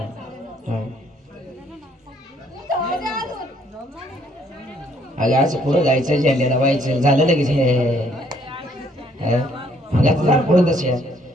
अगं असं पुढं जायचं झेंड्याला व्हायचं झालं लगेच पुढं तसे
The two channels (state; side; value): normal; both; correlation 0.66